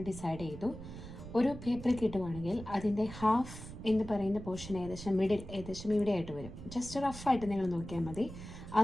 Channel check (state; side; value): noise; right; rumble, 12 dB below the sound